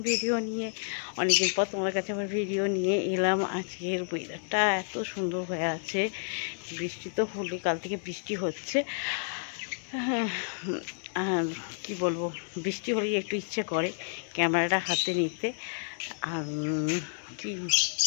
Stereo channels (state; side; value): silent; right; digital silence